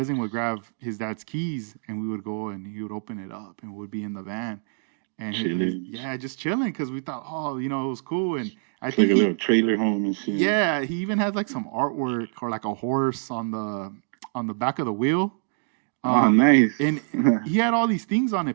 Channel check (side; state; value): left; silent; digital silence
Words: would grab his dad's keys, and we would go and he would open it up and would be in the van, and he's Chilling. yeah, just chilling, because we thought, oh, it was cool. And I It's think like a he little trailer home and shit. yeah, he even had like some artwork or like a horse on the back of the wheel. Oh, um nice. and he had all these things on